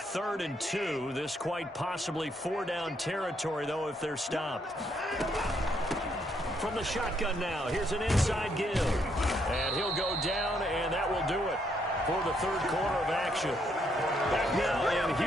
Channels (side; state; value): both; normal; correlation 0.73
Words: and 2. This quite possibly 4-down territory, though, if they're stopped. From the shotgun now, here's an inside give. And he'll go down, and that will do it for the 3rd quarter of action. Back now in